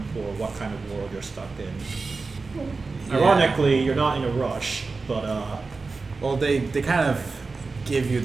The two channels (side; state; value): left; quieter; 4.1 dB